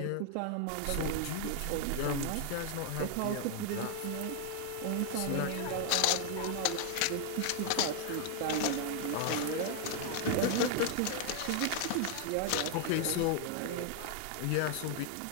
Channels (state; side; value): different; both; correlation 0.00